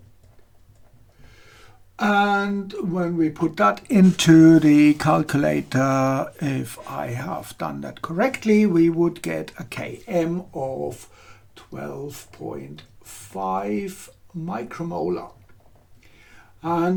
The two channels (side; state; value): both; identical; correlation 1.00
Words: And when we put that into the calculator, if I have done that correctly, we would get a Km of 12.5 micromolar.